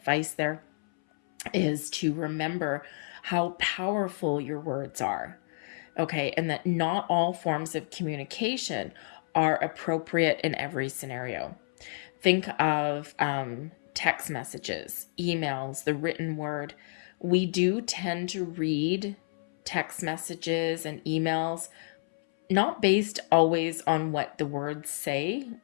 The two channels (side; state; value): right; silent; 58 dB below the other